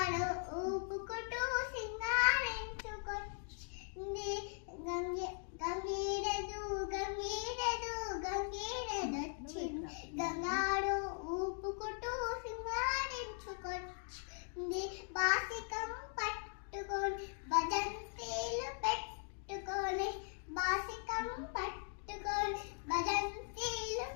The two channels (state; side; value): silent; right; 51 dB below the other